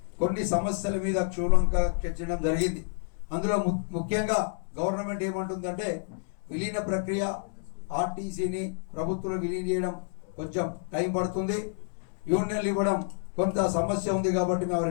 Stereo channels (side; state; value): right; silent; 59 dB below the other